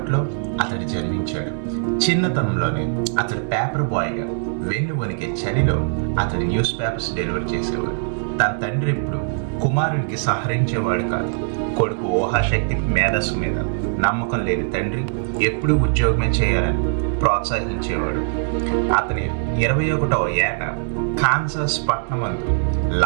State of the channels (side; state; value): left; silent; digital silence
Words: అతడు జన్మించాడు. చిన్నతనంలోనే అతడు పేపర్ బాయ్గా వెన్ను వణికే చలిలో అతడు న్యూస్ పేపర్స్ డెలివర్ చేసేవాడు. తన తండ్రి ఎప్పుడు కుమారునికి సహరించేవాడు కాదు. కొడుకు ఊహాశక్తికి మేధస్సు మీద నమ్మకం లేని తండ్రి ఎప్పుడూ ఉద్యోగమే చేయాలని ప్రోత్సహించేవాడు. అతని 21వ ఏట కాన్సాస్ పట్టణమందు